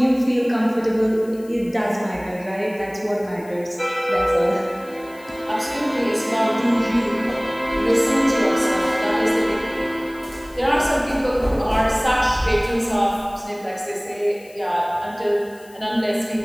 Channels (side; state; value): left; noise; hiss, 25 dB below the sound